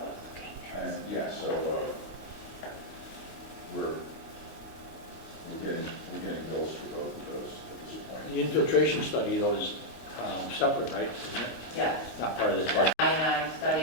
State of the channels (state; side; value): late; right; 25 ms